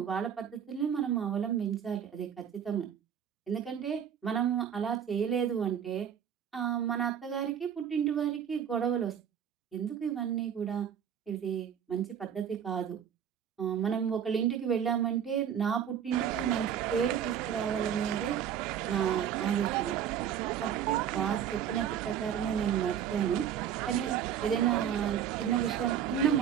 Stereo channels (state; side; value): quieter; left; 8.8 dB